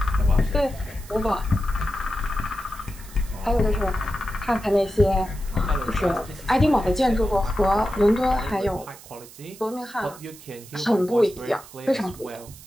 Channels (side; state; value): right; noise; hiss, 19 dB below the sound